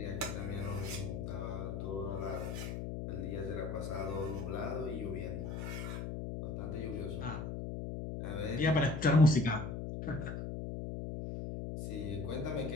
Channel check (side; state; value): left; noise; hum, 4 dB below the sound